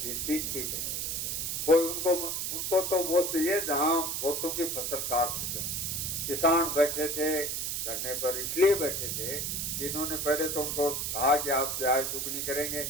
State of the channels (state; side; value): noise; right; hiss, 1 dB below the sound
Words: सीटें, कोई उनको तो वो चाहिए जहां वोटों की फसल काट सके। किसान बैठे थे धरने पर, इसलिए बैठे थे कि इन्होंने पहले तो उनको कहा कि आप प्याज दुगनी करेंगे,